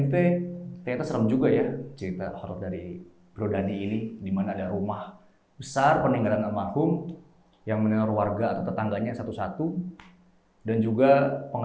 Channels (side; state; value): both; identical; correlation 1.00